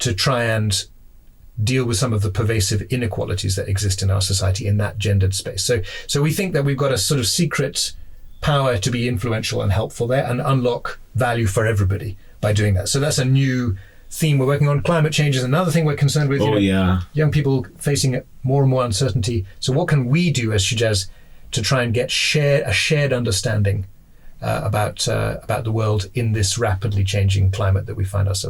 try and deal with some of the pervasive inequalities that exist in our society in that gendered space. So we think that we've got a sort of secret power to be influential and helpful there and unlock value for everybody by doing that. So that's a new theme we're working on. Climate change is another thing we're concerned with. Young people facing more and more uncertainty. So what can we do as Shujaaz to try and get a shared understanding about the world in this rapidly changing climate that we find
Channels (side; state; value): both; identical; correlation 1.00